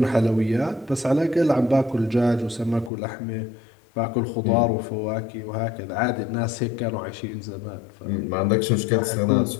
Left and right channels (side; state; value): right; drops out; at 2.9 s